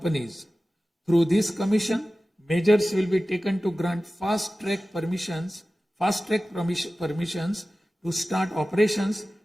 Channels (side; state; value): both; normal; correlation 0.96